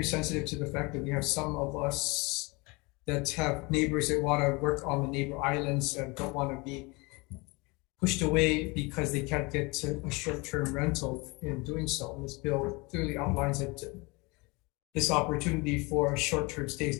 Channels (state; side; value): quieter; right; 26.4 dB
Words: sensitive to the fact that we have some of us that have neighbors that want to work on the neighbor islands and don't want to be pushed away because they can't get a short-term rental in doing so. And this bill clearly outlines that this opportunity for short-term stay